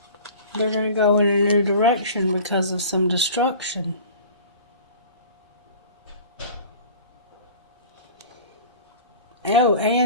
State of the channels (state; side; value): inverted; both; correlation -0.42